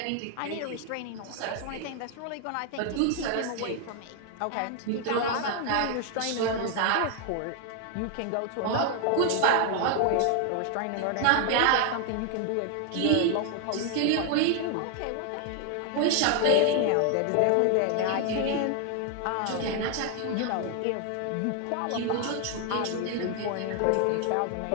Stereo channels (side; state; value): both; different; correlation 0.00